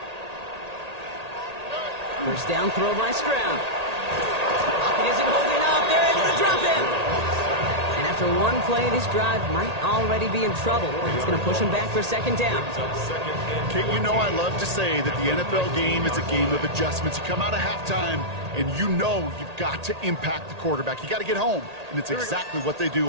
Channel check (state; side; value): late; left; 1.8 ms